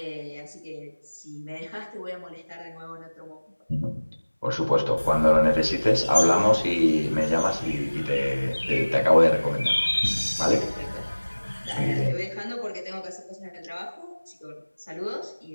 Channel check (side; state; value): both; inverted; correlation -1.00